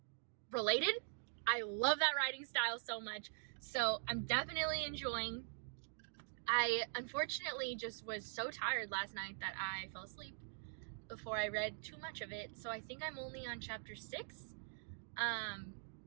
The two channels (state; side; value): silent; left; digital silence